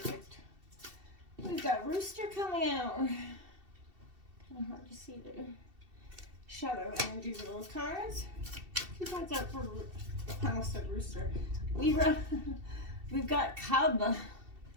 We've got Rooster coming out. Kind of hard to see the shadow energies of those cards. 2 cards out for I almost said Rooster. Libra, we've got Cub.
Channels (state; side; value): late; left; 2.7 ms